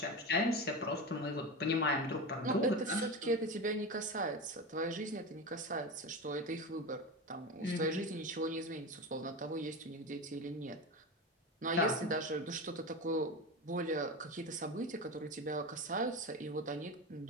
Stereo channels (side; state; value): both; normal; correlation 0.23